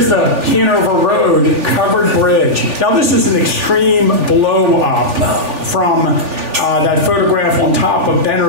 the Hanover Road covered bridge. Now this is an extreme blow up from that photograph on top of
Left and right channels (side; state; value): left; late; 3.4 ms